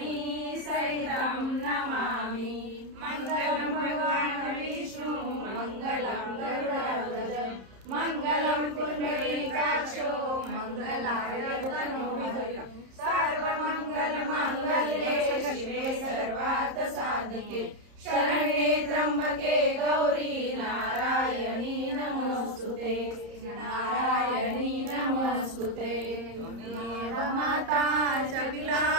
सहितं नमामि। मङ्गलं भगवान् विष्णु मङ्गलं गरुडध्वज मङ्गलं पुण्डरीकाक्षो मङ्गलाय तनोहरि। सर्वमङ्गलमाङ्गल्ये शिवे सर्वार्थसाधिके शरण्ये त्र्यम्बके गौरी नारायणी नमोस्तुते नारायणी नमोस्तुते। त्वमेव माता च पिता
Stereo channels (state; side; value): late; left; 30 ms